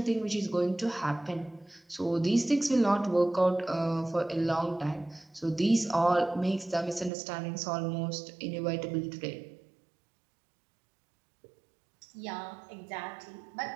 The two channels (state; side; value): drops out; left; at 7.1 s